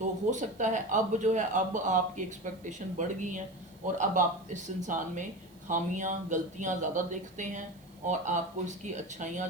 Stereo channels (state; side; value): noise; right; hiss, 28 dB below the sound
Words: हो सकता है अब जो है अब आपकी एक्सपेक्टेशन बढ़ गई हैं और अब आप इस इंसान में खामियां, गलतियां ज़्यादा देखते हैं और आपको इसकी अच्छाइयां